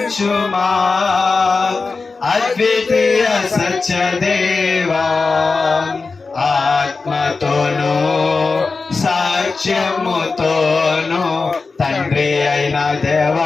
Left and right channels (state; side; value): quieter; right; 4.2 dB